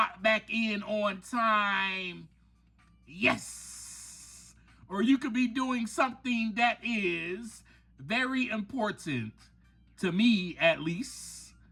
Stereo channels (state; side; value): identical; both; correlation 1.00